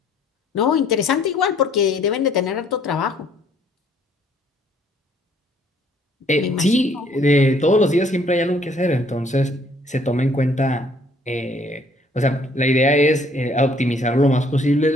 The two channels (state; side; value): normal; both; correlation 0.62